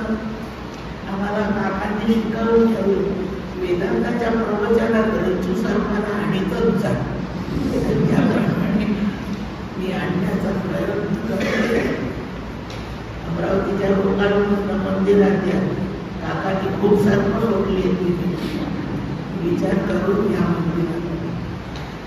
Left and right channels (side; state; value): both; identical; correlation 1.00